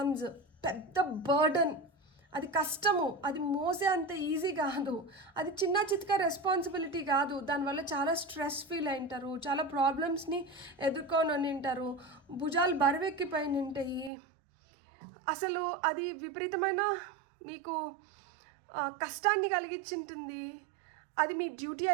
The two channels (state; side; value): drops out; left; at 14.1 s